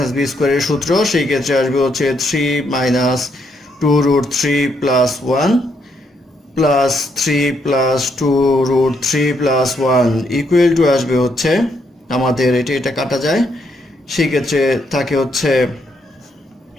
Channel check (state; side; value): normal; both; correlation 0.76